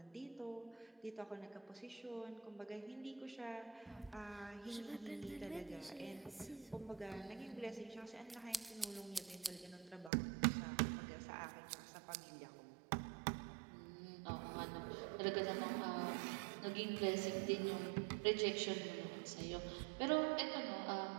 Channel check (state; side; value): drops out; left; at 10.1 s